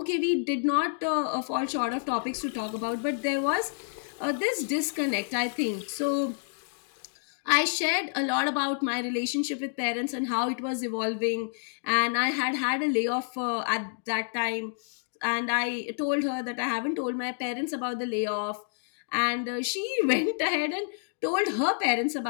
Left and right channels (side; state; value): right; silent; digital silence